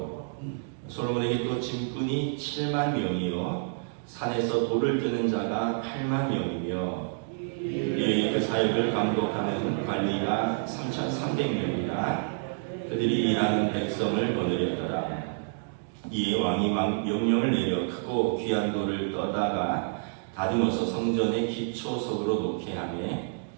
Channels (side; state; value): left; silent; digital silence